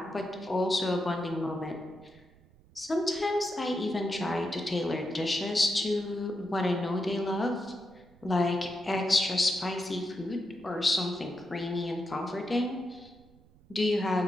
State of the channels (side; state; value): right; noise; rumble, 27 dB below the sound